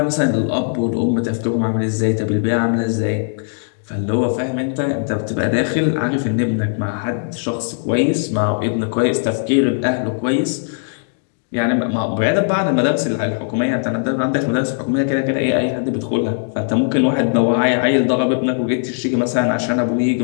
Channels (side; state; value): right; silent; digital silence